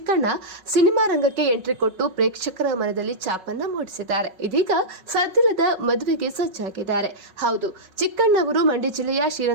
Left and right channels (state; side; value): late; left; 5.4 ms